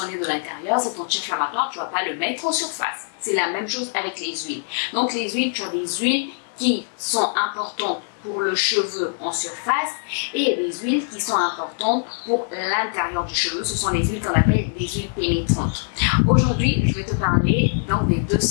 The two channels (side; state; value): right; silent; digital silence